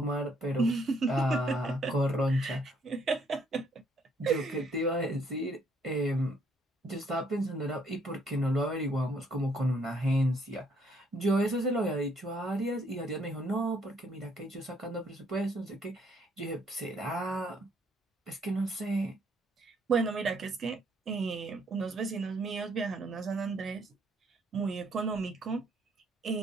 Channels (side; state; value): both; normal; correlation 0.68